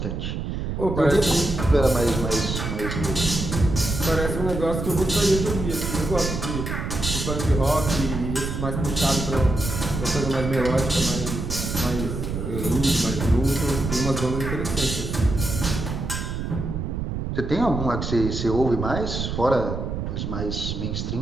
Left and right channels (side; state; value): right; noise; rumble, 4 dB below the sound